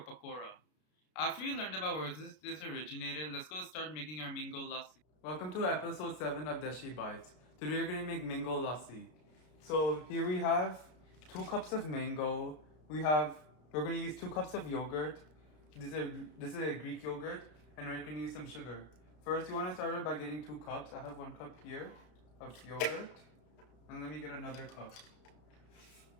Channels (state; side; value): late; right; 33 ms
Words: pakora. After you learned about where this dish originated, let's go start making our mango lassi. Welcome to episode 7 of Dashi Bites. Today we're going to make mango lassi. So here we have 2 cups of mango. We're going to use 2 cups of yogurt. This is a Greek yogurt, and we're going to use some sugar. First, you want to start out by getting 2 cups. I have 1 cup here of yogurt, and let me get another cup.